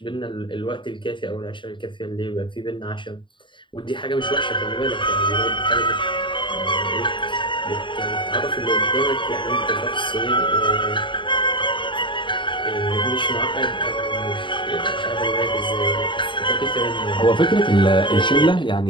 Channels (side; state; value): right; late; 0.23 ms